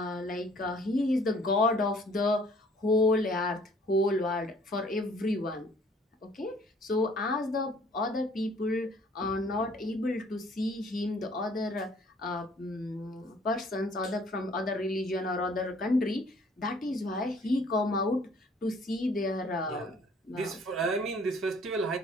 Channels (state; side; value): normal; both; correlation 0.57